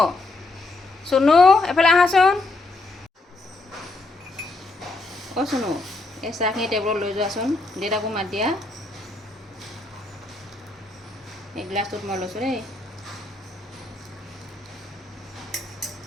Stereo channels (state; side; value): quieter; right; 3.1 dB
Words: চুনু এফালে আহাচোন। অঁ চুনু এই চাহখিনি টেবুলত লৈ যোৱাচোন, দেউতাকো মাত দিয়া। এই গ্লাছটোত মই লৈছোঁ দেই।